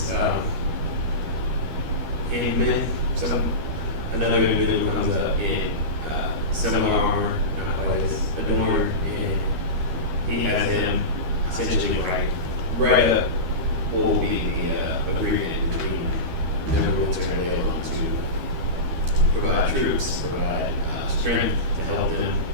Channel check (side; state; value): left; late; 12 ms